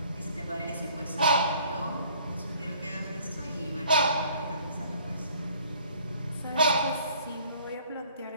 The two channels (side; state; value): both; inverted; correlation -0.56